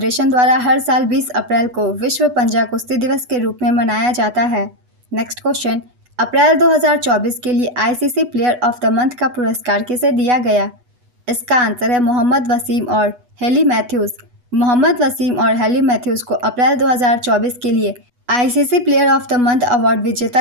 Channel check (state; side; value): late; left; 8.2 ms